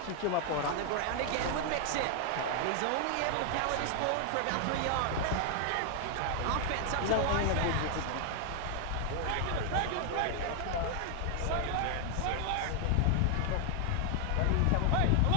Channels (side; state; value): both; different; correlation 0.00